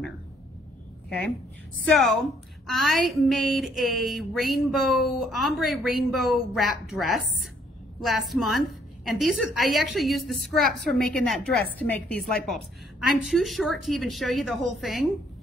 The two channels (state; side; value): normal; both; correlation 0.66